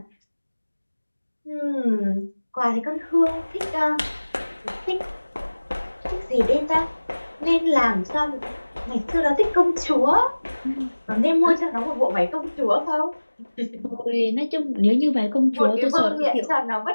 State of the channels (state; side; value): inverted; both; correlation -1.00